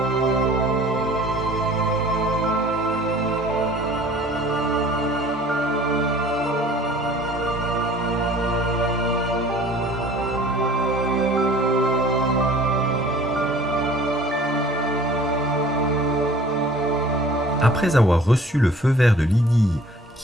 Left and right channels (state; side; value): normal; both; correlation 0.50